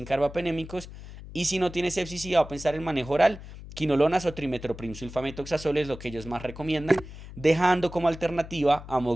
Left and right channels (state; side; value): noise; left; hum, 14 dB below the sound